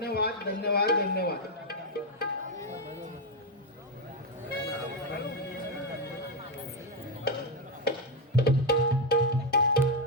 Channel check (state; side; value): normal; both; correlation 0.05